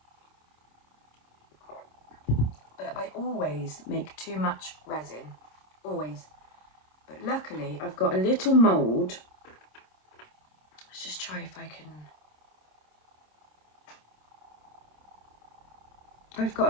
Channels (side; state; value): right; late; 26 ms